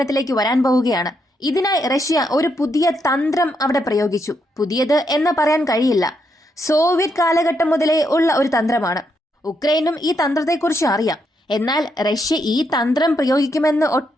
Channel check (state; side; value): normal; both; correlation 0.79